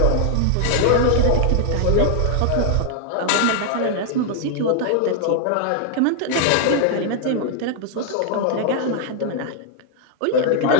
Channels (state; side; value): different; both; correlation 0.00